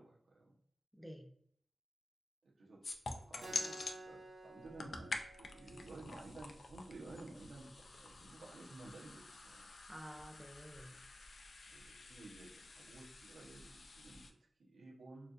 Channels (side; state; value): both; normal; correlation 0.92